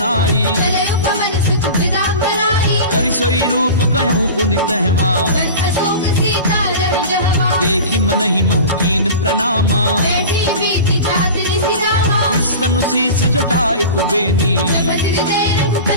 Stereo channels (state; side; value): inverted; both; correlation -0.34